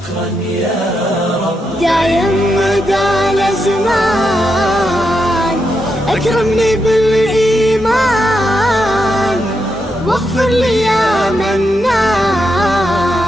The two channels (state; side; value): normal; both; correlation 0.84